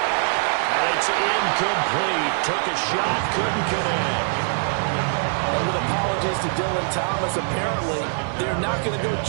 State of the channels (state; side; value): silent; left; 58 dB below the other